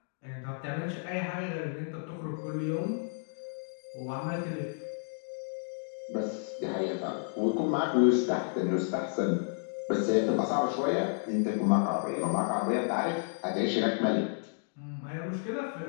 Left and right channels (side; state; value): right; silent; digital silence